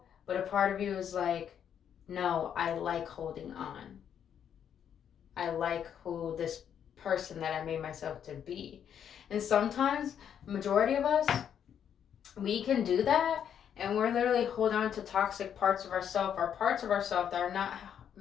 but a part of you is like, no, I like holding on. I like who this person that I made myself to be. And sometimes, majority of us, we can do that, and we're literally holding on to toxic parts of ourselves, or parts of ourselves that are not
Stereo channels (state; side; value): quieter; right; 8.8 dB